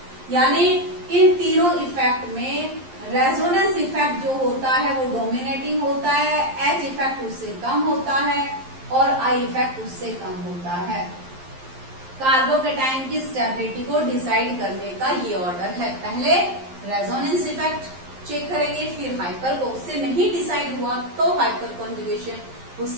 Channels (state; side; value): late; left; 11 ms